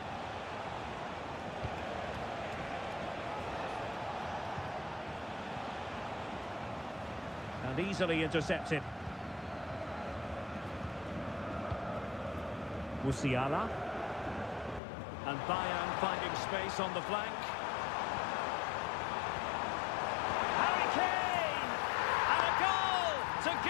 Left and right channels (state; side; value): drops out; right; at 14.8 s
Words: And easily intercepted. Musiala. And Bayern finding space on the flank. Harry Kane! And a goal to